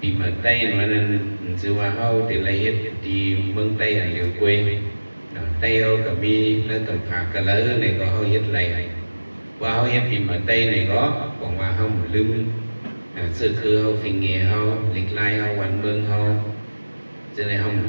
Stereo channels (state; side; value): inverted; both; correlation -1.00